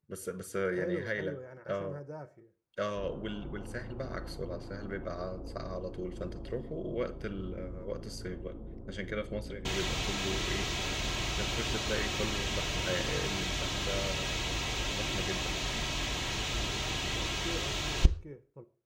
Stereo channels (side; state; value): both; identical; correlation 1.00